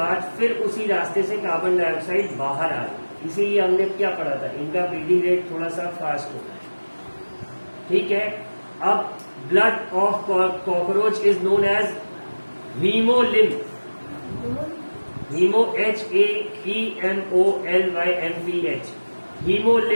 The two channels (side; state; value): both; inverted; correlation -1.00